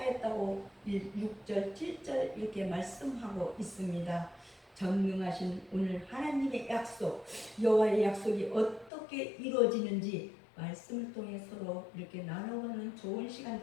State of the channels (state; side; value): drops out; right; at 8.9 s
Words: 6절 7절 이렇게 말씀하고 있습니다. 전능하신 오늘 하나님의 약속, 여호와의 약속이 어떻게 이루어지는지 말씀을 통해 서로 이렇게 나눠보는 좋은 시간